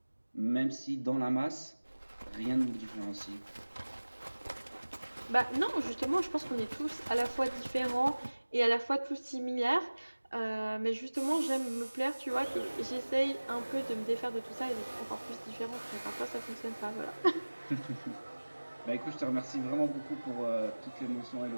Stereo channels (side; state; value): both; inverted; correlation -1.00